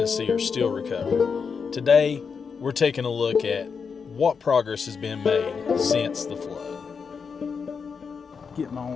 are still recovering. Today, we're taking a look at what progress has been made since the flood. Getting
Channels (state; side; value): quieter; right; 5.8 dB